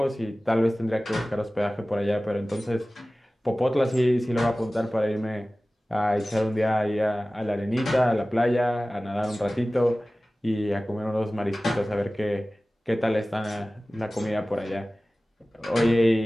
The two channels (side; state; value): both; normal; correlation 0.97